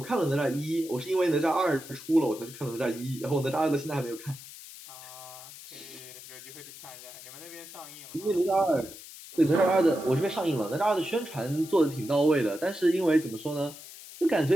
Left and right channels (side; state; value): left; noise; hiss, 15 dB below the sound